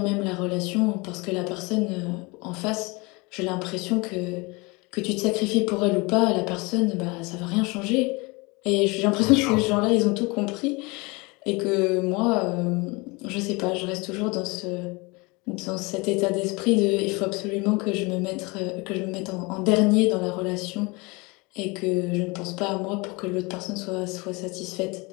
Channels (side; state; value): right; quieter; 26.4 dB